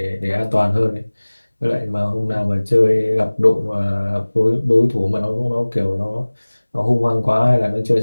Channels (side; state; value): both; inverted; correlation -1.00